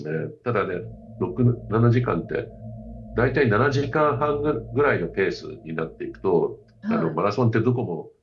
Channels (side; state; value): both; identical; correlation 1.00